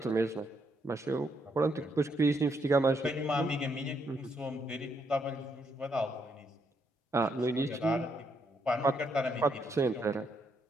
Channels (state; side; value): normal; both; correlation 0.76